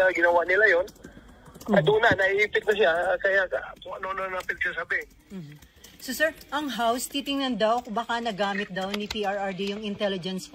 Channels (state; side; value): identical; both; correlation 1.00